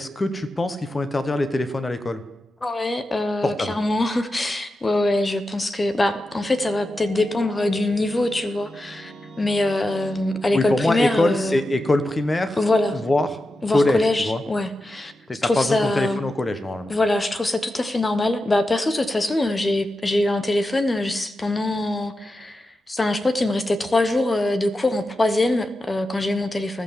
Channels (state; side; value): normal; both; correlation 0.90